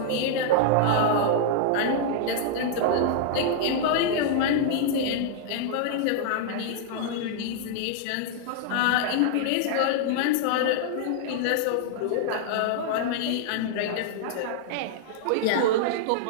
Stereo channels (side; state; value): both; different; correlation -0.01